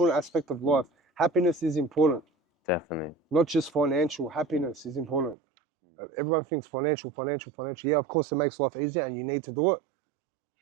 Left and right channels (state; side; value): drops out; left; at 5.4 s